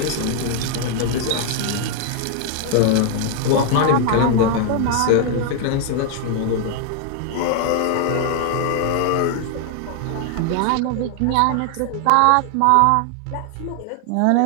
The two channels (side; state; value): both; different; correlation 0.00